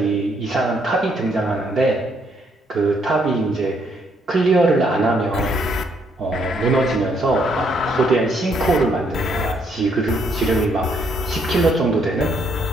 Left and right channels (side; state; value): both; normal; correlation 0.71